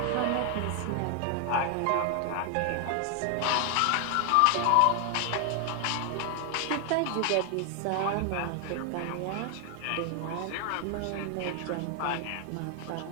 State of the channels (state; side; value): different; both; correlation 0.00